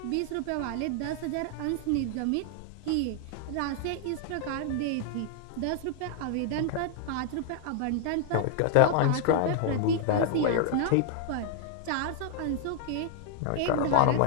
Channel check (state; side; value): different; both; correlation 0.00